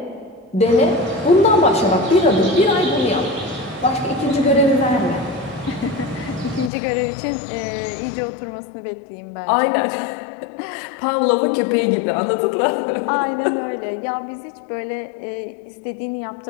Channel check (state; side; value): drops out; right; at 6.7 s